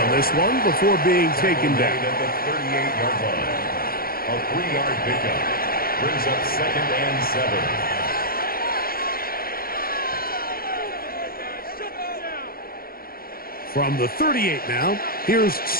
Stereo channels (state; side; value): late; right; 0.43 ms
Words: this one before being taken down. At the 38-yard line. A 3-yard pickup brings up 2nd and 7. From the 38 now, here's